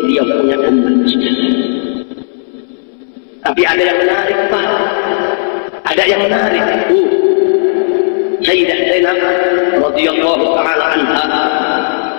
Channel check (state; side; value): silent; right; digital silence